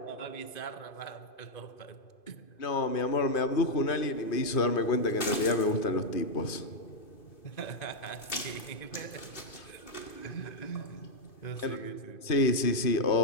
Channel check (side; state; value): right; late; 2.5 ms